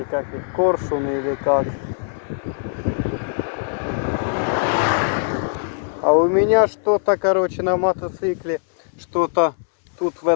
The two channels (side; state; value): right; silent; 61 dB below the other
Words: как их, коршуны или как. А у меня что-то, короче, на мотоцикле, что-то тут в